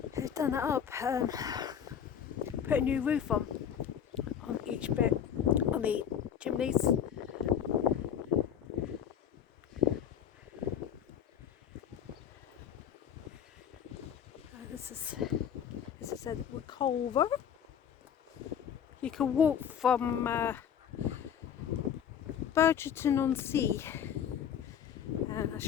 They've done that up, put a new roof on each bit, on the chimneys. This is a Reculver. You can walk from Burgerton-on-Sea, and I'll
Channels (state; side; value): quieter; right; 8.6 dB